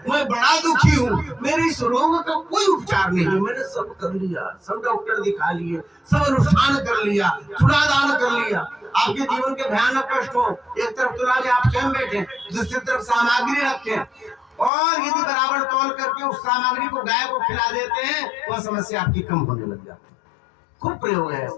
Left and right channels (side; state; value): right; drops out; at 14.7 s